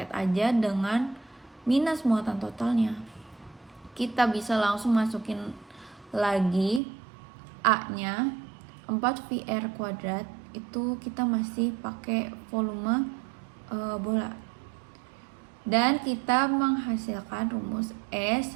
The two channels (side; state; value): left; drops out; at 6.8 s